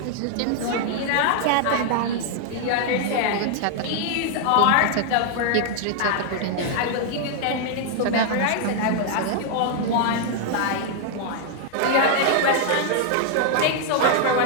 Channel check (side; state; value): both; different; correlation 0.00